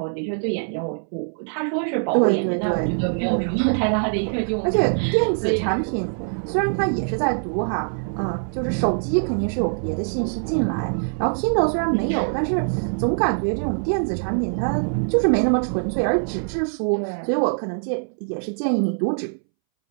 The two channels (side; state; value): left; silent; 63 dB below the other